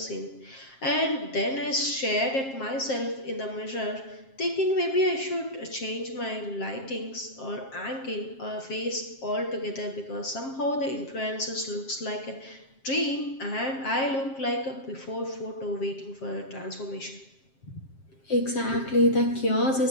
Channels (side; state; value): right; late; 7.5 ms